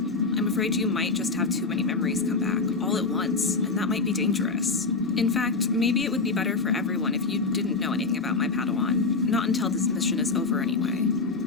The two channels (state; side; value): quieter; right; 4.1 dB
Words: afraid you might just have too many memories come back, all at once, and that might be dangerous. In fact, maybe it would be better for everyone if you didn't know anything about my Padawan. Not until this mission is over anyway.